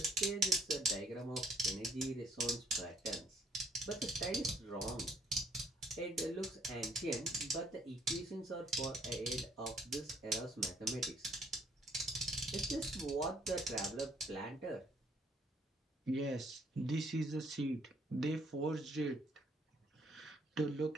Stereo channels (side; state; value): both; normal; correlation 0.65